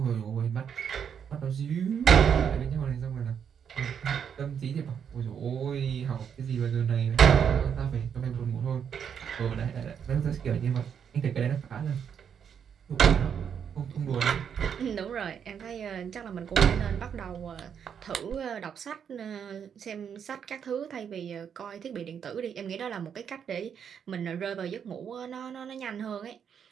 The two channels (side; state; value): left; quieter; 7.8 dB